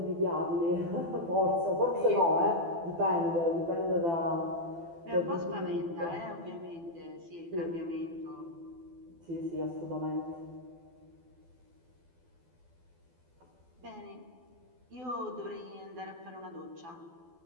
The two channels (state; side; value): late; left; 12 ms